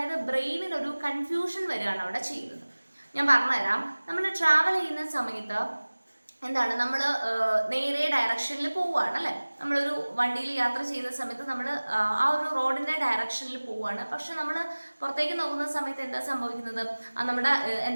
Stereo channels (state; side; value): inverted; both; correlation -1.00